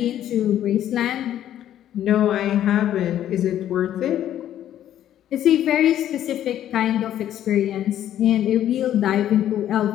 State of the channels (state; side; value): quieter; right; 11.4 dB